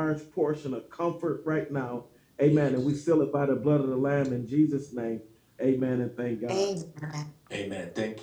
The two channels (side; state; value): both; identical; correlation 1.00